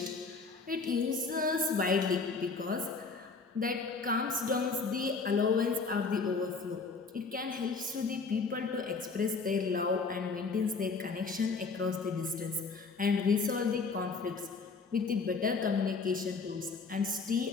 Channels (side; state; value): right; quieter; 4.5 dB